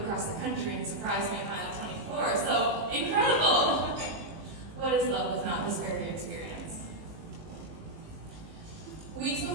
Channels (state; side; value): late; left; 19 ms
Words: the country and surprised me at mile 24, so incredible! What is love if not this very experience? Weeks